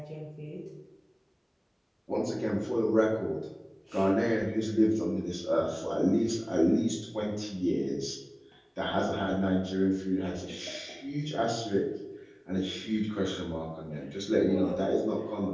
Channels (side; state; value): both; identical; correlation 1.00